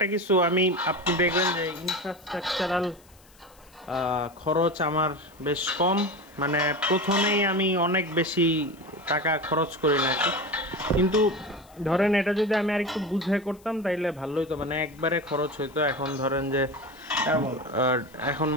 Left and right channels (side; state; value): left; noise; hiss, 28 dB below the sound